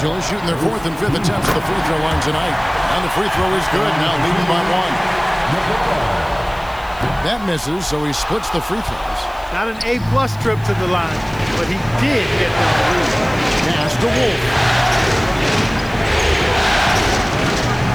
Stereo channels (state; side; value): noise; left; hiss, 25 dB below the sound